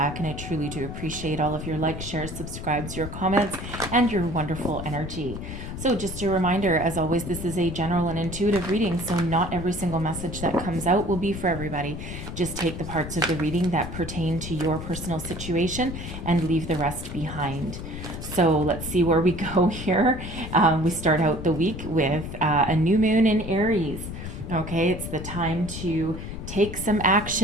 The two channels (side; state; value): left; noise; rumble, 8 dB below the sound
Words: and I truly do appreciate all of your likes, shares, subscribes, your comments, and your wonderful energy. So just a reminder, as always, this is a general and intuitive reading, so not every single message that comes out will be for everybody. Just take the parts of the reading that pertain to your personal situation and leave the rest behind. So let's see where we go here. We start out the week with a new moon in Aries. Okay, it's the time to take some